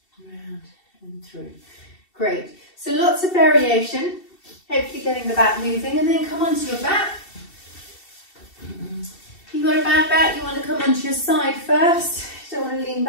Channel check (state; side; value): late; right; 2.7 ms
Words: Round and through. Great. So lots of variation. Hopefully getting the back moving, and then come onto your back. If you've got a bad back, you want to come onto your side first. Don't want to lean